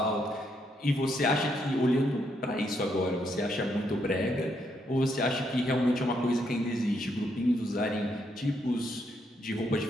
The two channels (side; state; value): both; normal; correlation 0.76